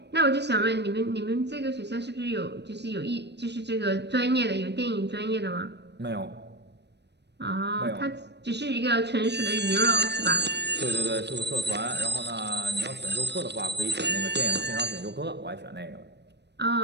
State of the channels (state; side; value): late; left; 0.50 ms